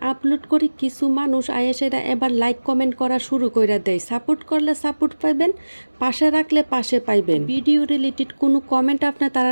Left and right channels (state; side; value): inverted; both; correlation -1.00